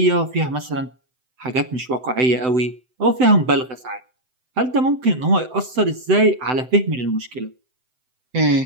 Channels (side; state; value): left; late; 7.8 ms